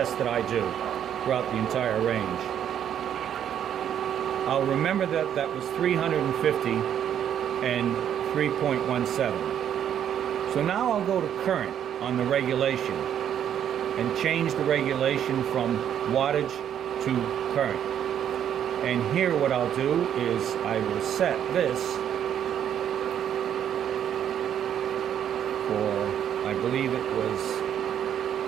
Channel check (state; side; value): quieter; left; 9.6 dB